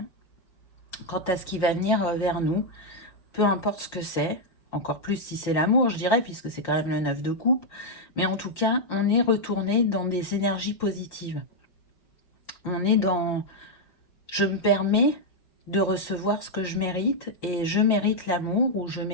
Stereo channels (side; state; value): right; late; 5.6 ms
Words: quant à ce qui va venir vers nous, peu importe ce que c'est, encore plus si c'est l'amour, je dirais, puisque c'est quand même le 9 de coupe, mais en tout cas, on est retourné dans des énergies positives. On est dans... Je me permets de recevoir ce que je mérite, et je mérite l'amour, ou je